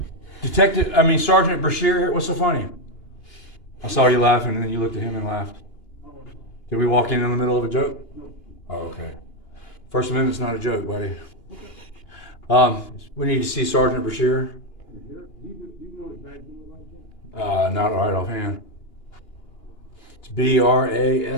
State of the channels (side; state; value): right; late; 2.8 ms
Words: Sergeant Brashear here? What's so funny? I saw you laughing and then you looked at him and laughed. Did we walk in the middle of a joke? Oh, okay. First Amendment's not a joke, buddy. We need to see Sergeant Brashear. Not right offhand. It's